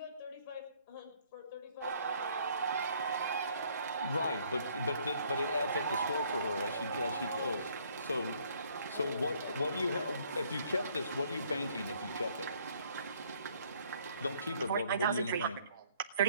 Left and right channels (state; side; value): inverted; both; correlation -0.63